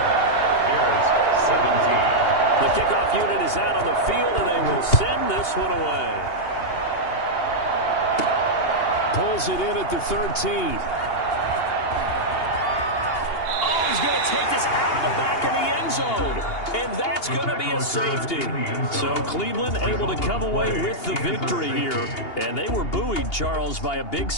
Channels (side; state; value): right; late; 2.8 ms